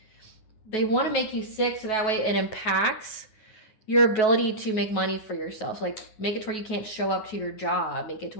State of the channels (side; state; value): right; late; 9.3 ms